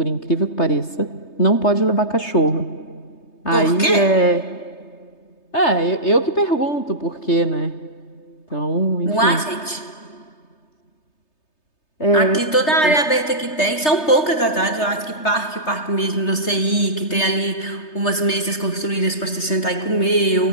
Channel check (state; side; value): late; right; 3.3 ms